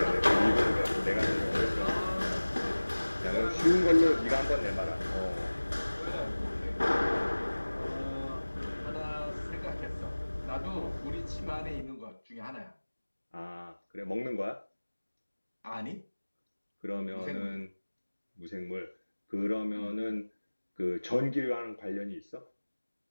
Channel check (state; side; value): inverted; both; correlation -1.00